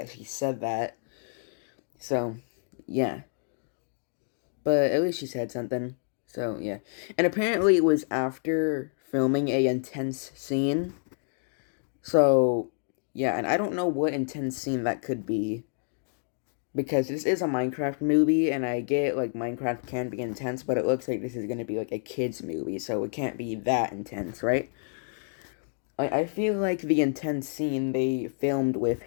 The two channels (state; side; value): silent; right; digital silence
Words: she said that. So, yeah. But at least she said something. So, yeah. And apparently it was after filming a intense scene. So, yeah, and I don't know what intense scene that could be. Because this is a Minecraft movie, and I get, like, Minecraft can be intense, but it looks like this is going to be, like, a kid's movie, so it can't be that intense, right? I feel like the intense scene they filmed with